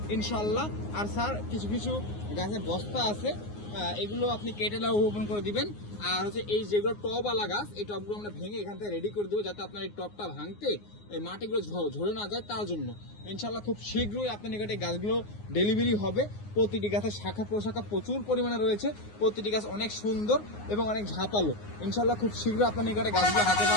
ইনশাল্লাহ। আর স্যার কিছু কিছু গাছের বস্তা আছে, এগুলো আপনি কেটে রোপণ করে দিবেন। আর হচ্ছে এই যেগুলো টবওয়ালা গাছ, এই টবগুলো আমরা ভেঙে এখান থেকে রেডি করে দেবো, যাতে আপনার এই টবটা ভাঙতে এই মাটিগুলো ঝরে না যায়, তার জন্য ইনশাল্লাহ খুব শীঘ্রই আপনার নিকটে গাছগুলো ডেলিভারি হবে। প্রতিটি গাছের শাখা প্রশাখা প্রচুর পরিমাণে রয়েছে, প্রতিটি গাছ অনেক সুন্দর এবং অনেক ঝাঁপালো। ইনশাল্লাহ খুব শীঘ্রই আপনার নিকটে গাছগুলো হাতে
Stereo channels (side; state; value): right; late; 9.6 ms